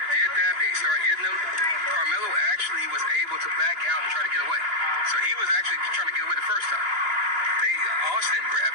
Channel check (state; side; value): late; left; 3.0 ms